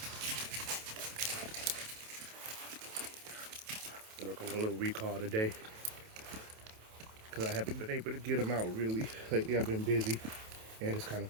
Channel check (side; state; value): left; late; 27 ms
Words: Work on a little recall today because I haven't been able to get them out really. Lately I've been busy and it's kind of